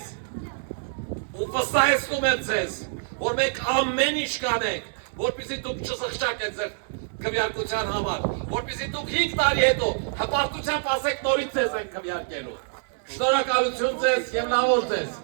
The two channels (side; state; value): left; silent; 61 dB below the other